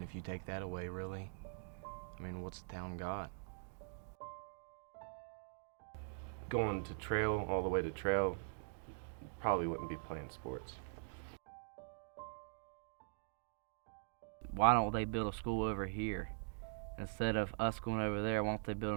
if you take that away, really, I mean, what's the town got? Going to trail, all the way to trail, probably wouldn't be playing sports. Why don't they build a school over here? Instead of us going over there, why don't they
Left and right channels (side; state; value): left; silent; digital silence